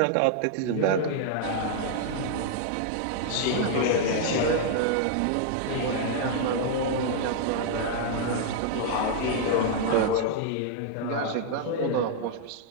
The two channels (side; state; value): both; different; correlation -0.01